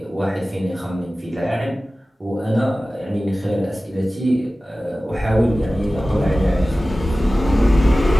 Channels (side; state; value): both; normal; correlation 0.96